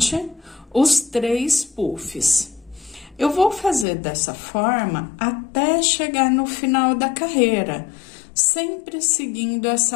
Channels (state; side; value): drops out; right; at 3.9 s